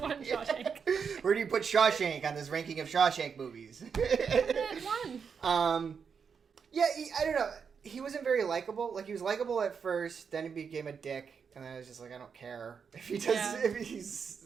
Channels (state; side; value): quieter; left; 6.3 dB